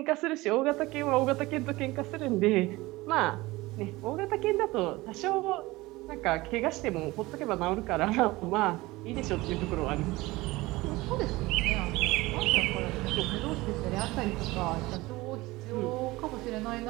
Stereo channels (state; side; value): quieter; left; 20.4 dB